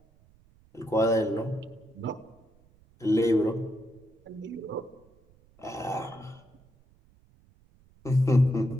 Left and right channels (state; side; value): noise; right; rumble, 30 dB below the sound